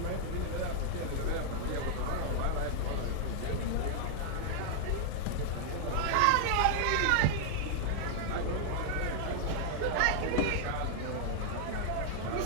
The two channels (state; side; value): different; both; correlation -0.01